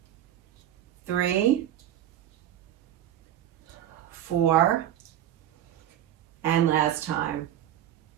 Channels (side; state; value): left; quieter; 11.6 dB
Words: 3, 4, and last time.